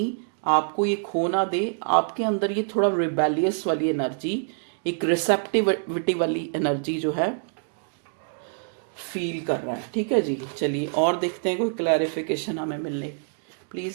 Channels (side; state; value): left; silent; digital silence